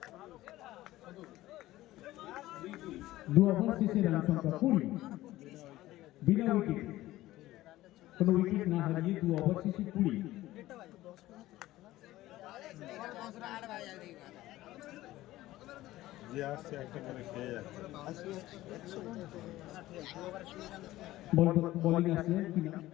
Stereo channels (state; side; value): quieter; right; 16.2 dB